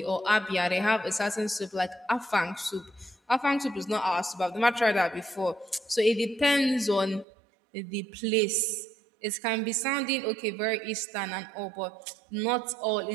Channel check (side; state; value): left; drops out; at 7.2 s